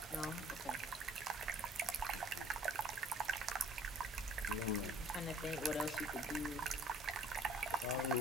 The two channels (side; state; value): both; normal; correlation 0.54